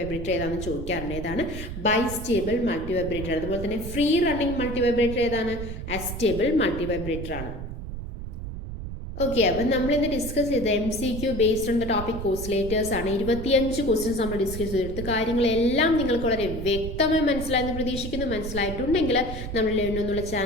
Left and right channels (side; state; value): right; noise; rumble, 8 dB below the sound